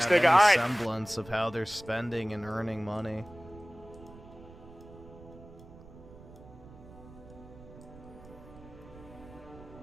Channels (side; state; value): right; noise; rumble, 19 dB below the sound